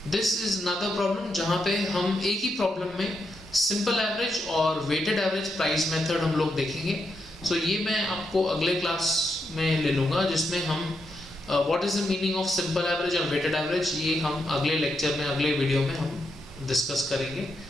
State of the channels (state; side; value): normal; both; correlation 0.82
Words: दिस इज अनदर प्रॉब्लम जहाँ पे हम एक ही प्रॉब्लम में सिंपल एवरेज और वेटेड एवरेज प्राइस मेथड हम लोग देखेंगे। सो ये मैं आपको अगले क्लास में ले लूँगा, जिसमें हम what is the meaning of simple average और वेटेड एवरेज, ये हम अगले लेक्चर में, अगले वीडियो में हम डिस्कस करेंगे।